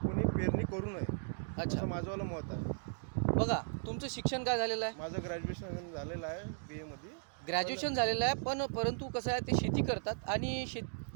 कोणी पेरणी करू नये, अच्छा. असं माझंवालं मत आहे. बघा तुमचं शिक्षण काय झालेलं आहे? माझं ग्रॅज्युएशन झालेलं आहे BA मध्ये. ग्रॅज्युएशन झालेलं आहे, पण परंतु कसं आहे ते शेती करतात आणि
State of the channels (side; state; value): left; silent; digital silence